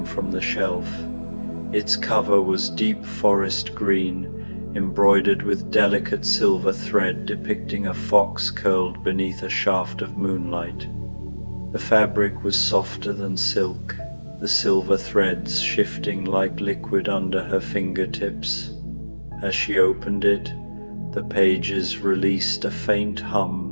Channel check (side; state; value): both; inverted; correlation -1.00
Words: from the shelf. Its cover was deep forest green, embroidered with delicate silver thread depicting a fox curled beneath a shaft of moonlight. The fabric was softer than silk, the silver threads shifting like liquid under her fingertips. As she opened it, the pages released a faint